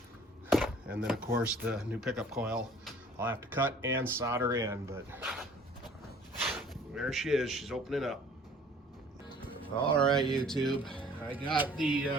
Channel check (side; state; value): both; normal; correlation 0.52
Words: And then of course the new pickup coil I'll have to cut and solder in, but there she is, she's opening up. All right, YouTube, I got